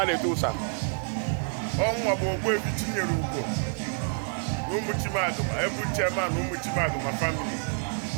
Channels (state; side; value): silent; left; 56 dB below the other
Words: to Tusa. Ọnwa bụ ogbu ebi tinyere ugwo n'ụmụchimadụ ma ebu chairman ụmụchimadụ ma family